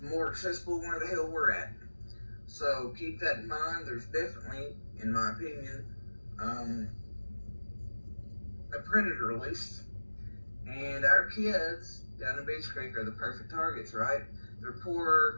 accessible where the hell we're at. So keep that in mind. There's definitely, in my opinion, a predator loose. And our kids down in Beach Creek are the perfect targets, right? They're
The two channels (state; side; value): inverted; both; correlation -1.00